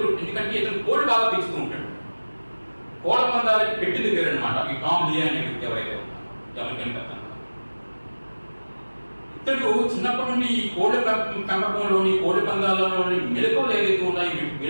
ఇతను కోళ్ళు బాగా పెంచుతూ ఉంటాడు. కోళ్ళ పందాలకి పెట్టింది పేరు అనమాట ఈ టామ్ లియే అనే వ్యక్తి ఎవరైతే ఉన్నారో అమెరికన్ పెత్తందారు. ఇతడు చిన్నప్పటి నుండి ఈ కోళ్ళ పెంపకంలోని కోళ్ళ పందాలలోని మెలకువలు ఏదైతే ఉన్నాయో ఈ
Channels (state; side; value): inverted; both; correlation -1.00